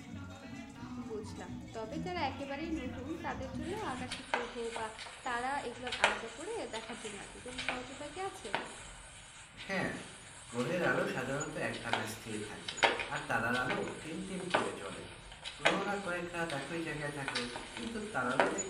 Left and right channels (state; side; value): identical; both; correlation 1.00